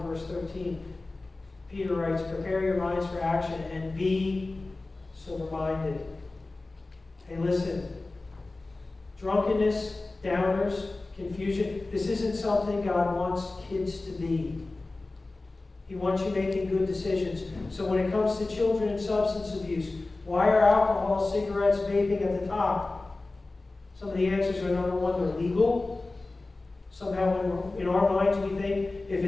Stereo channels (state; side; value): quieter; right; 3.2 dB